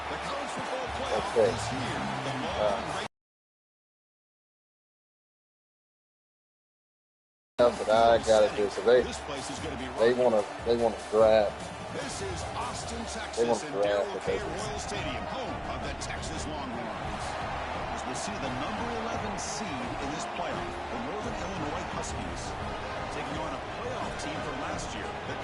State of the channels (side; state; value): both; identical; correlation 1.00